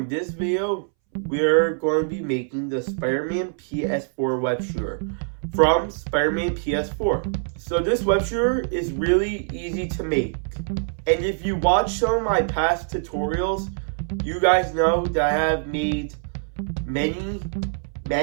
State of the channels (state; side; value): silent; left; 63 dB below the other